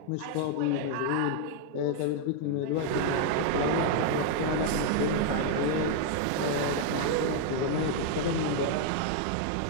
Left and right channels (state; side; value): different; both; correlation 0.00